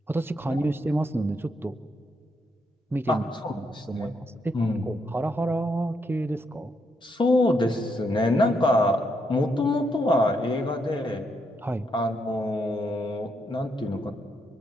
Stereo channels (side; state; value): both; normal; correlation 0.78